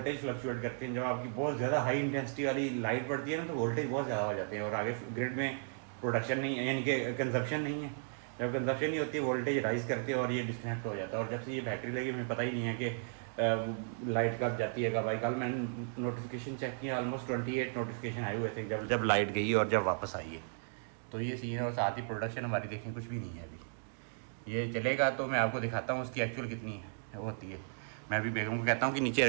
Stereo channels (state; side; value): silent; left; digital silence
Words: फ्लक्चुएट करते हैं। जब आपकी बहुत ज़्यादा हाई इंटेंसिटी वाली लाइट पड़ती है ना, तो वोल्टेज बहुत ज़्यादा हो जाते हैं और आगे ग्रिड में प्रोडक्शन नहीं है, यानी कि कंजप्शन नहीं है। जब कंजप्शन नहीं होती है, वोल्टेज राइज करते हैं और ये डिस्कनेक्ट हो जाता है। और जब से ये बैटरी लगी, हमें पता ही नहीं है कि लाइट कब जाती है कब आई। कल मैंने नोटिफिकेशन चेक किया, ऑलमोस्ट 28 नोटिफिकेशन आए हुए थे जब जब लाइट गई और जब वापस आई है। तो ये सीन है। और साथ ही प्रोडक्शन हमारी देखें कुछ भी नहीं है अभी। ये चलेगा तो मैं आपको दिखाता हूँ उसकी एक्चुअल कितनी है होती है। मैं अभी बेगम को कहता हूँ कि नीचे